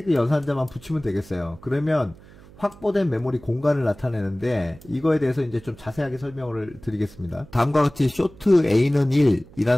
연산자만 붙이면 되겠어요. 그러면 확보된 메모리 공간을 나타내는데 이거에 대해서 이제 좀 자세하게 설명을 드리겠습니다. 다음과 같이 쇼트 A는 1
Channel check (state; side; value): noise; right; hum, 22 dB below the sound